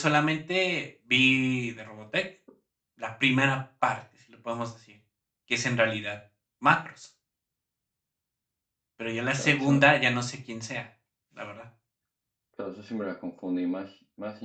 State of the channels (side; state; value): both; identical; correlation 1.00